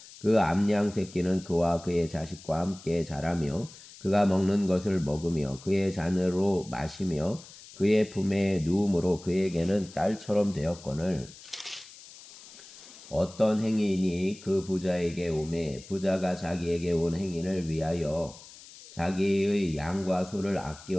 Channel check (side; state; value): left; noise; hiss, 19 dB below the sound